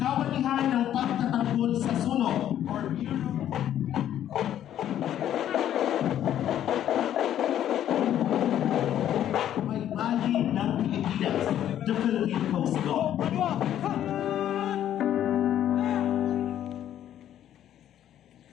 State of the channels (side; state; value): right; quieter; 11.1 dB